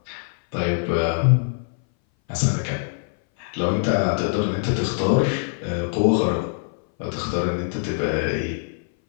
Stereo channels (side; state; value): right; silent; 60 dB below the other